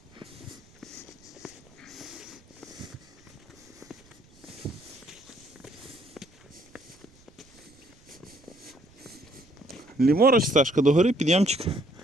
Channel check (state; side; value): noise; right; rumble, 28 dB below the sound